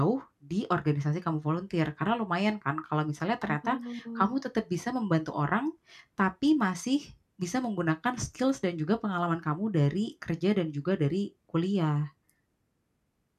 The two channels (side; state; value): both; identical; correlation 1.00